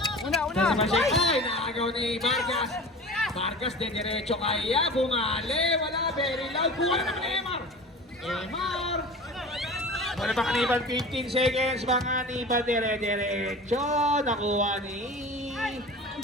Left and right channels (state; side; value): normal; both; correlation 0.36